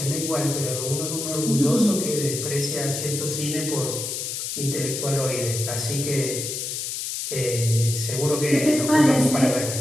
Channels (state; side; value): noise; left; hiss, 4 dB below the sound